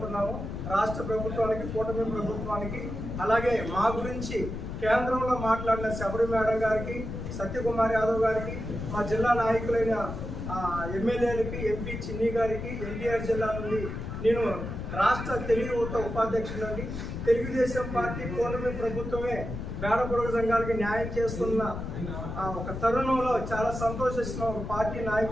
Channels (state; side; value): noise; left; rumble, 6 dB below the sound